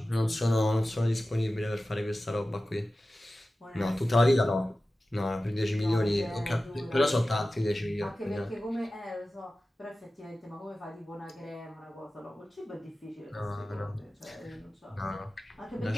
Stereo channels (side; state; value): both; normal; correlation 0.95